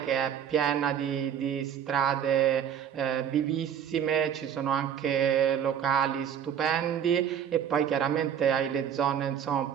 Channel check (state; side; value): quieter; left; 8.8 dB